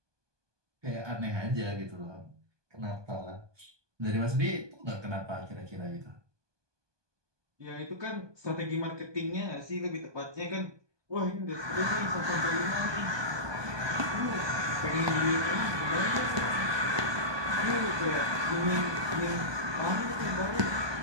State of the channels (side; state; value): left; late; 1.2 ms